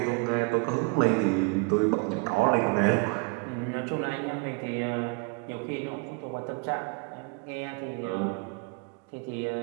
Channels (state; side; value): quieter; left; 31.7 dB